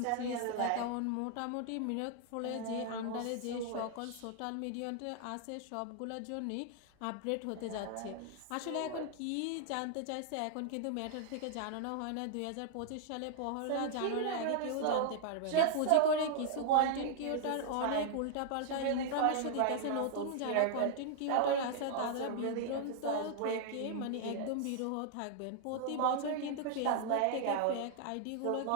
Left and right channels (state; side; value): different; both; correlation -0.01